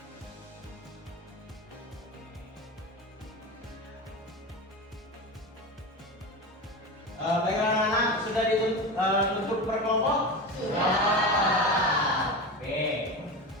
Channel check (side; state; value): both; normal; correlation 0.24